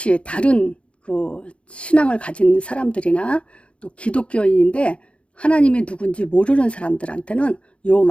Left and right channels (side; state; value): right; late; 0.060 ms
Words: 다른 신앙을 가진 사람들이나 또 기독교인인데 하나님이 누군지 모르는 사람들한테는 요